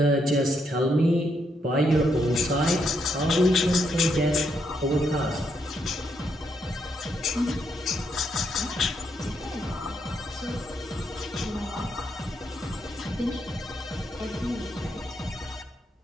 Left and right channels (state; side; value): normal; both; correlation 0.77